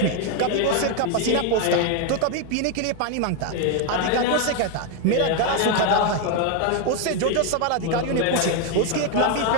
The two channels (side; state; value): both; different; correlation 0.01